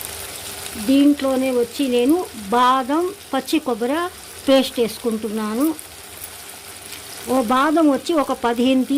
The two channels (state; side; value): identical; both; correlation 1.00